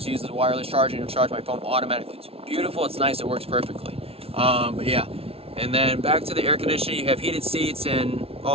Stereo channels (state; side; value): late; left; 0.28 ms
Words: use the wireless charger and charge my phone automatically. It's beautiful, it's nice, it works perfectly. But yeah, and then back to the air conditioning, you have heated seats and